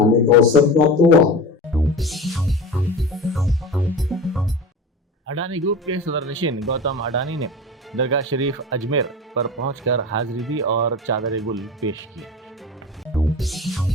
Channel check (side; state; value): both; normal; correlation 0.31